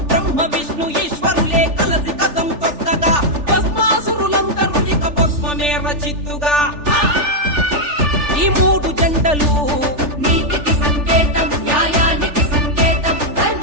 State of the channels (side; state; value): left; late; 3.4 ms